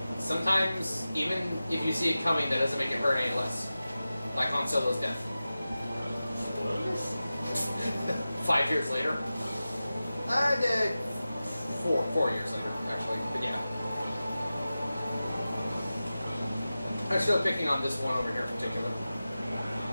Sometimes, even if you see it coming, that doesn't make it hurt any less. Like Han Solo's death. Spoilers? 5 years later. Four years later, actually, but yeah. I'm still picking on this one over here in particular.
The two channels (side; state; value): both; inverted; correlation -0.95